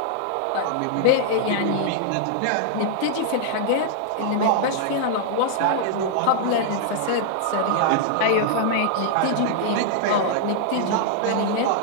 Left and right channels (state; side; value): different; both; correlation -0.01